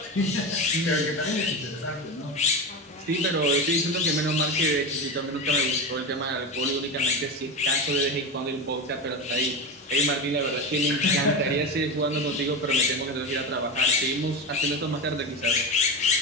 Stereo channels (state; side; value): normal; both; correlation 0.20